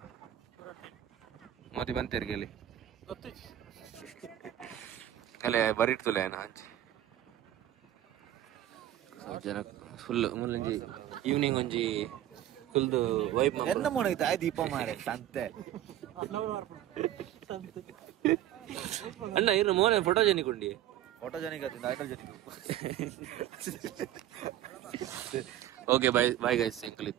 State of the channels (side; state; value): left; quieter; 12.3 dB